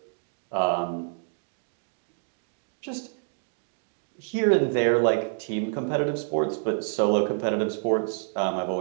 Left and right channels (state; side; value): silent; left; digital silence